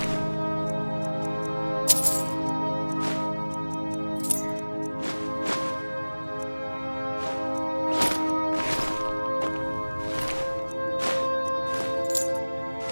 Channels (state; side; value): inverted; both; correlation -1.00